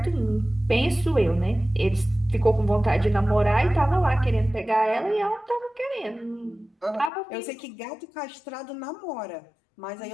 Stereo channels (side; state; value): right; drops out; at 7.1 s